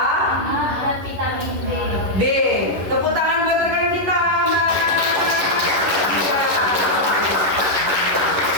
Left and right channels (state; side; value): late; left; 11 ms